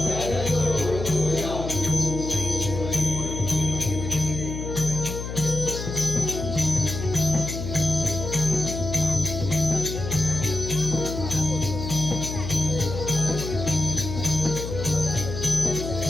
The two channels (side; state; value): left; noise; hum, 6 dB below the sound